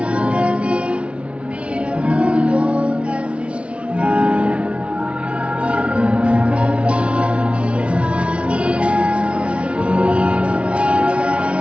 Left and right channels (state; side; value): late; left; 0.060 ms